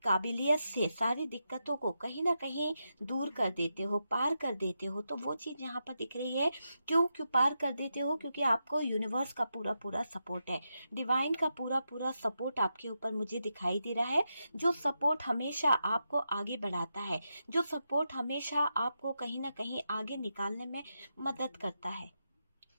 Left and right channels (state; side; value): inverted; both; correlation -0.86